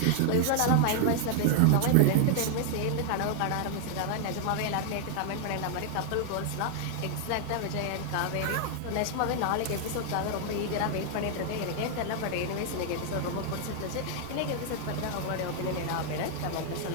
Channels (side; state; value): both; different; correlation 0.00